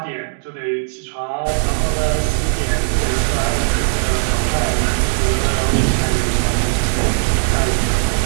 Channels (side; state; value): left; silent; digital silence